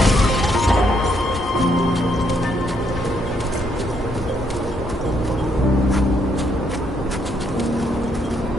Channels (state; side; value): normal; both; correlation 0.73